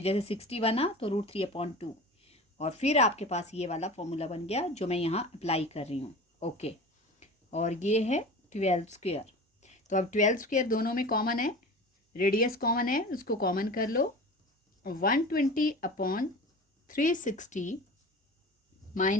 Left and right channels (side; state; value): both; normal; correlation 0.36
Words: जैसे 60 बना तो √3/2 और फिर आपके पास ये वाला फॉर्मूला बन गया जो मैं यहाँ अप्लाई कर रही हूँ। ओके, और ये है 12²। तो अब 12² दोनों में कॉमन है, रेडियस कॉमन है, उसको कॉमन कर लो। 120/360